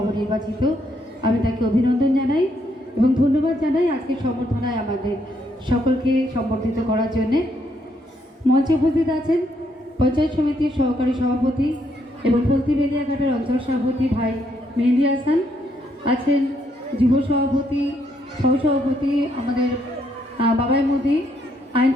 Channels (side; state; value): both; normal; correlation 0.74